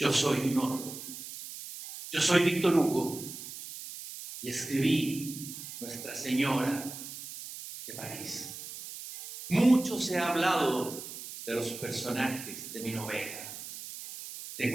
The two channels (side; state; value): right; noise; hiss, 11 dB below the sound